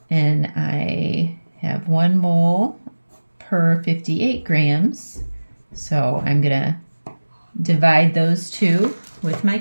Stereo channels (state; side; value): inverted; both; correlation -1.00